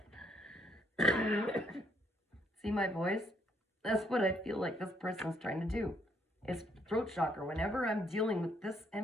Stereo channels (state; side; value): normal; both; correlation 0.69